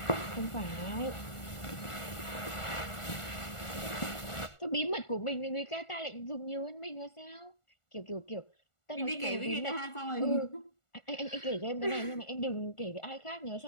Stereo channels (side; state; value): right; late; 1.4 ms